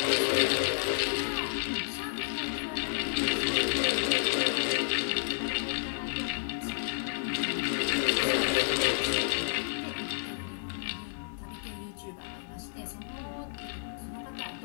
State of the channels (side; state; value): right; silent; digital silence